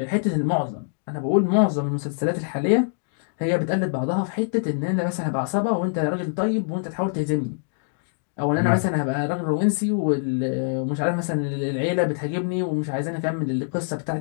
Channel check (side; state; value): right; silent; digital silence